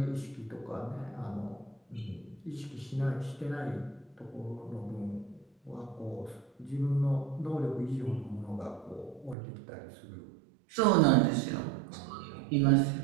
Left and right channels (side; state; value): left; drops out; at 9.3 s